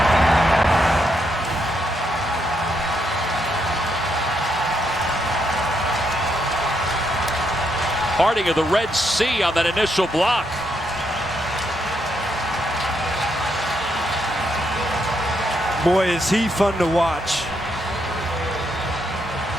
Parting of the Red Sea on that initial block. Boy, is he fun to watch.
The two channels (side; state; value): both; normal; correlation 0.78